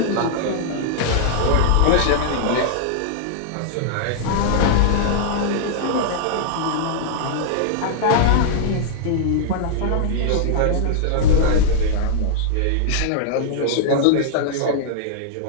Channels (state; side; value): different; both; correlation -0.01